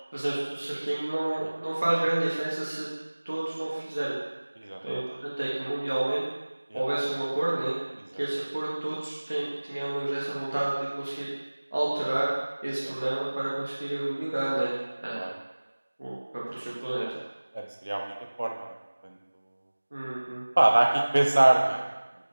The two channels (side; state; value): both; inverted; correlation -1.00